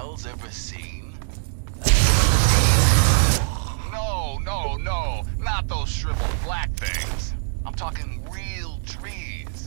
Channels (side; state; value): left; silent; digital silence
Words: ever seen? No, not those shriveled black things. I'm talking real